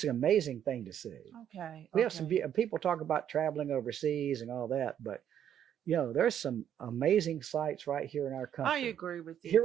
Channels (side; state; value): left; quieter; 9.8 dB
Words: an amazing thing to see. Okay. We have some people talk about traveling overseas and all that, but you know, there's some amazing sites right here in our country. I agree with you.